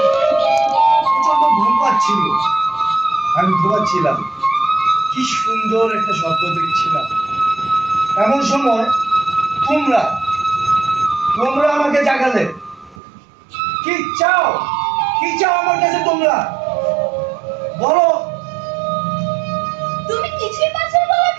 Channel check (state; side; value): drops out; left; at 13.0 s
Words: প্রচন্ড ঘুম পাচ্ছিল। আমি ঘুমাচ্ছিলাম, কি সুন্দর একটা স্বপ্ন দেখছিলাম। এমন সময় তোমরা আমাকে জাগালে। কি চাও, কি চাও আমার কাছে তোমরা? বলো। তুমি কিছুই পাচ্ছ না বলার